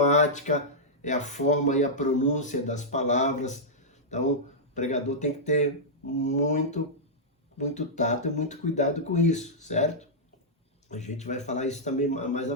é a forma e a pronúncia das palavras. Então, o pregador tem que ter muito tato e muito cuidado com isso, certo? A gente vai falar isso também mais à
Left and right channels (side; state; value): both; normal; correlation -0.10